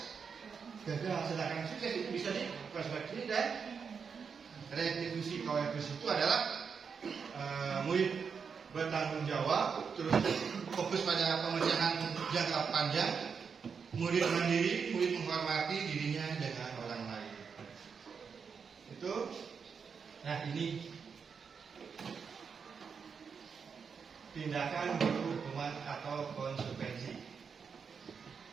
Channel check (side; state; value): left; quieter; 6.1 dB